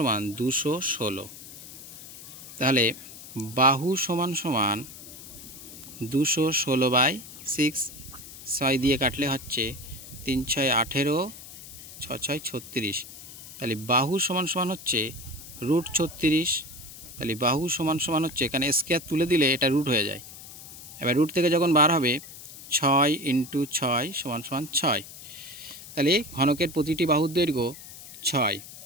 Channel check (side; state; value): left; noise; hiss, 15 dB below the sound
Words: 216। তাহলে বাহু সমান সমান 216/6, 6 দিয়ে কাটলে হচ্ছে 3 6 18, 6 6 36। তাহলে বাহু সমান সমান হচ্ছে √36। তাহলে বাহু সমান সমান হচ্ছে, এখানে স্কয়ার তুলে দিলে এটা রুট হয়ে যায়। এবার রুট থেকে যখন বার হবে 6 × 6 সমান সমান 6। তাহলে ঘনকের প্রতিটি বাহুর দৈর্ঘ্য 6।